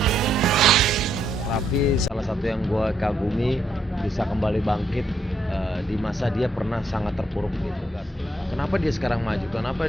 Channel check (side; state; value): both; normal; correlation 0.75